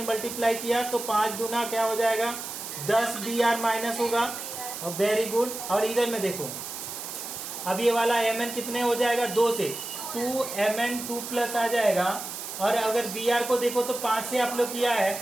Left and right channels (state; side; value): noise; right; hiss, 8 dB below the sound